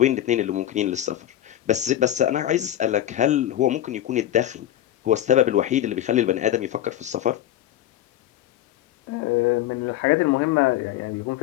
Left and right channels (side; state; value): right; quieter; 12.6 dB